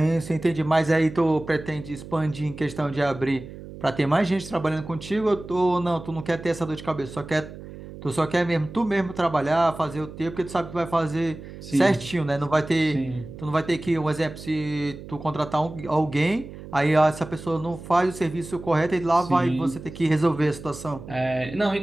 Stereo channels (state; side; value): noise; right; hum, 14 dB below the sound